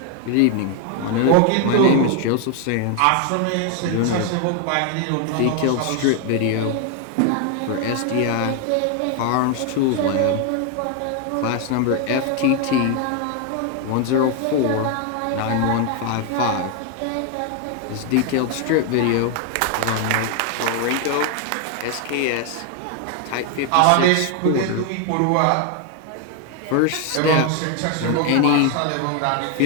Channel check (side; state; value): both; different; correlation 0.01